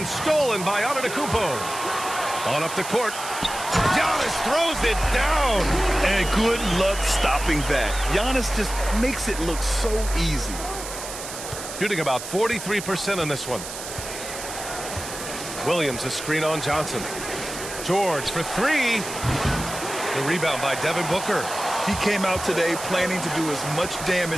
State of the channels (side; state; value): right; noise; hiss, 9 dB below the sound